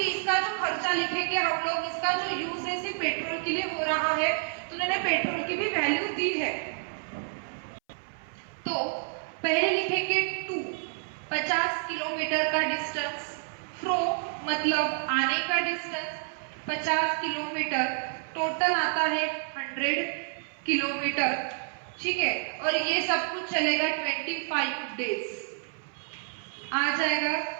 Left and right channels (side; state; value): left; silent; 59 dB below the other